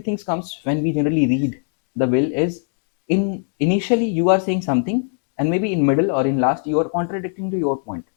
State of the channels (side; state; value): right; silent; 55 dB below the other